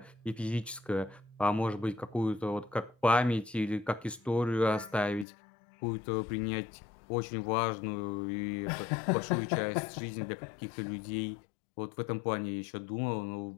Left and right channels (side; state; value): right; drops out; at 5.2 s